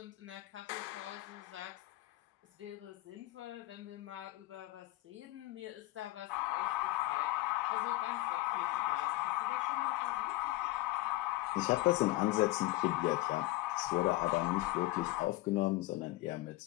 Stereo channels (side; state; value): right; quieter; 18.2 dB